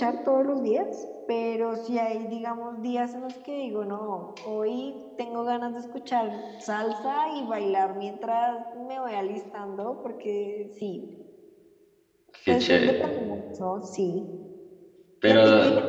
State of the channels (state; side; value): identical; both; correlation 1.00